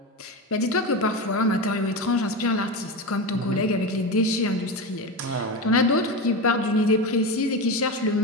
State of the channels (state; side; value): normal; both; correlation 0.20